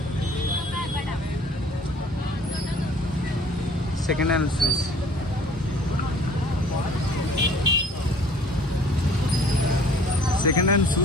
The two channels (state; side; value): normal; both; correlation 0.54